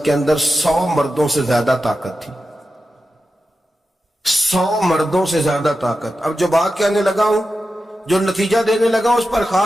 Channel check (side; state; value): both; normal; correlation 0.91